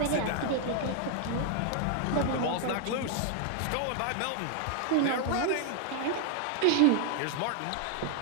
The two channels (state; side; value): different; both; correlation 0.00